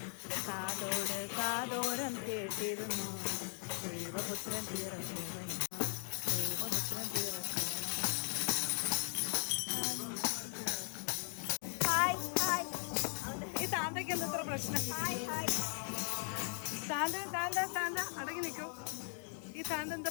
കാതോട് കാതോരം കേട്ടിരുന്നു ദൈവപുത്രൻ പിറക്കുവൻ. ദൈവപുത്രൻ പിറക്കുവൻ. ഈ താന്തയ്ക്ക് എന്താ ഇത്ര പ്രശ്നം? താന്ത താന്ത താന്ത അടങ്ങി നിൽക്കൂ. ഈ താന്ത എന്താ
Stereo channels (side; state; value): right; silent; 52 dB below the other